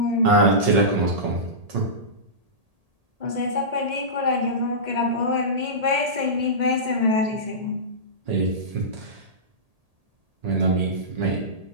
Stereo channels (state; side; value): late; left; 1.8 ms